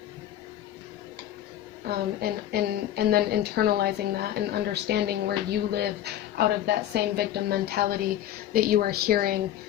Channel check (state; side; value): quieter; right; 12.0 dB